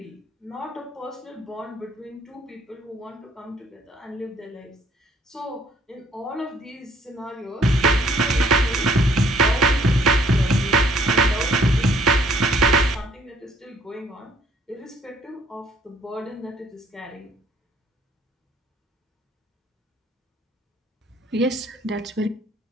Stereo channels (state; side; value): normal; both; correlation 0.63